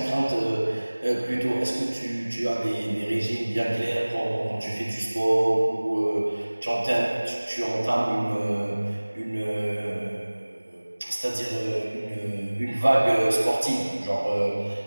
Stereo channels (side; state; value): both; inverted; correlation -1.00